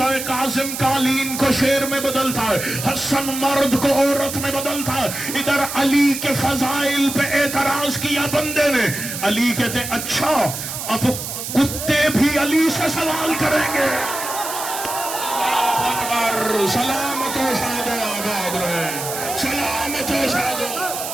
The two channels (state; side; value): noise; right; hiss, 6 dB below the sound